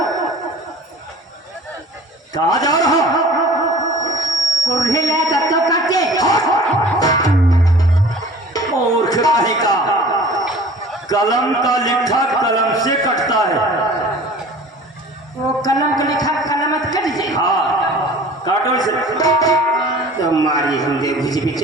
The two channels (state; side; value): normal; both; correlation 0.44